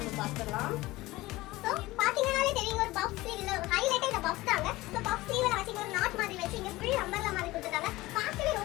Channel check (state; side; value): quieter; right; 19.2 dB